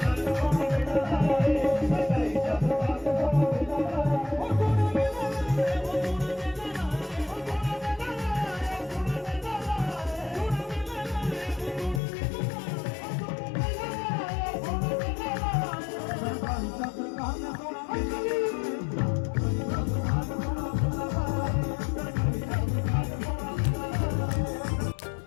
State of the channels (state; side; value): drops out; right; at 12.0 s